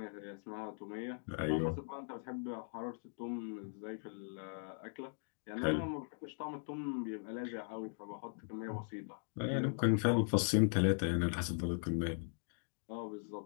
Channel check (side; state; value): right; silent; digital silence